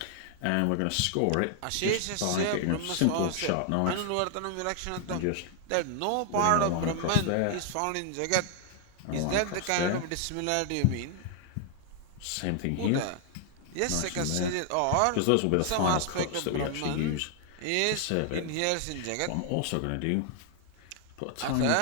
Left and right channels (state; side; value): different; both; correlation 0.00